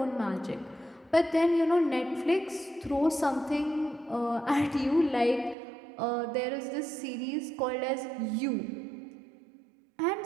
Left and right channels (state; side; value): drops out; left; at 5.6 s